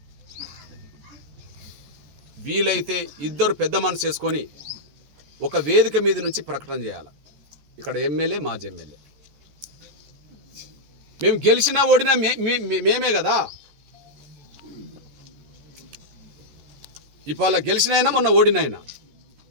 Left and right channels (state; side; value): late; left; 14 ms